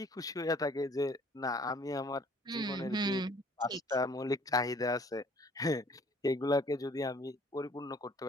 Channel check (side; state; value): both; normal; correlation 0.57